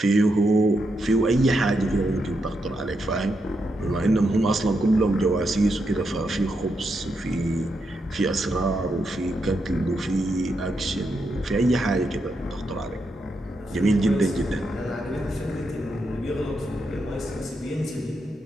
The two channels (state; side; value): normal; both; correlation 0.83